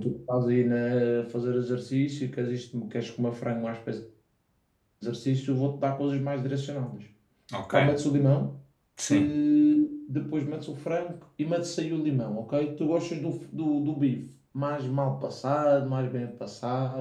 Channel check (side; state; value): both; identical; correlation 1.00